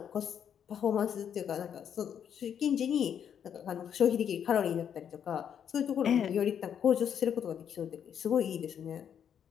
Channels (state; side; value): quieter; right; 8.5 dB